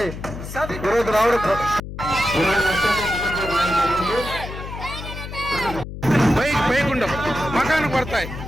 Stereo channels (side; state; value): left; noise; hum, 10 dB below the sound